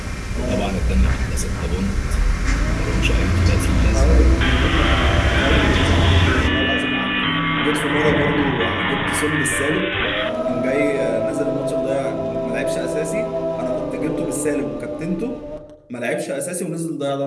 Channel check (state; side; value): identical; both; correlation 1.00